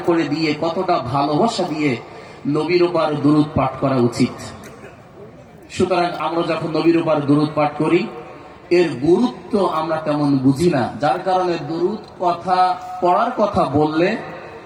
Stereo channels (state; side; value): identical; both; correlation 1.00